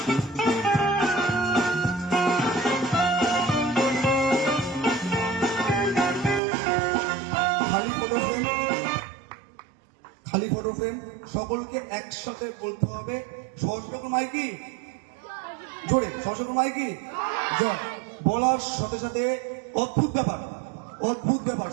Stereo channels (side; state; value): left; drops out; at 6.4 s